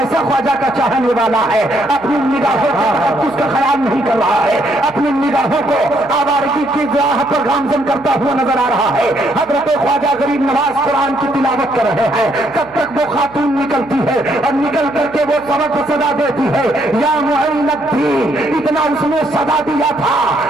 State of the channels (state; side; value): noise; right; hum, 25 dB below the sound